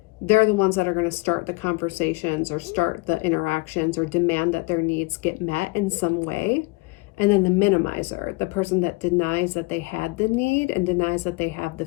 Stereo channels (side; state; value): right; quieter; 25.5 dB